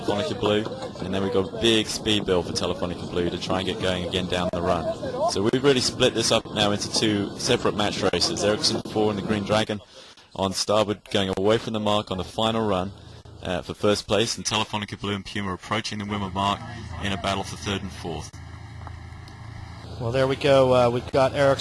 Blue, and then we've got a big speed build for Telefonica Blue to try and get going again down the run. So we've really split this up now into 2 separate match races. Ericsson 4 and the Green Dragon on starboard going away from the mark on the final run for first place, and Telefonica Blue and Puma approaching the Wimmer mark in a battle for third and fourth. Well, there we go. We've got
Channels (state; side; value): identical; both; correlation 1.00